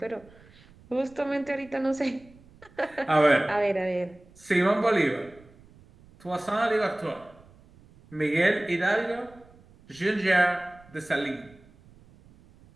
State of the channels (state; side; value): noise; right; rumble, 26 dB below the sound